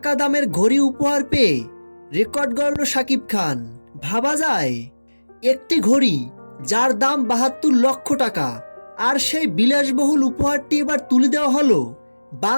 দামের ঘড়ি উপহার পেয়ে রেকর্ড গড়ল শাকিব খান। ভাবা যায়, একটি ঘড়ি যার দাম ৭২ লক্ষ টাকা, আর সেই বিলাসবহুল উপহারটি এবার তুলে দেওয়া হলো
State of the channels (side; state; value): both; inverted; correlation -1.00